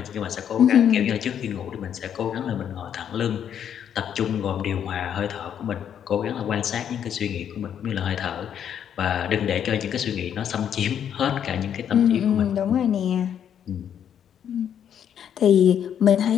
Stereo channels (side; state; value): right; quieter; 9.0 dB